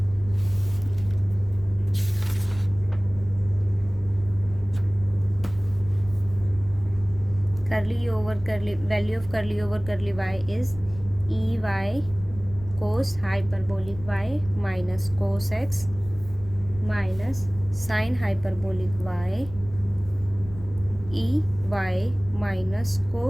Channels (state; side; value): noise; left; rumble, 15 dB below the sound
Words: Curly u over curly, value of curly over curly y is ey cos hyperbolic y minus cos x minus sin hyperbolic y ey minus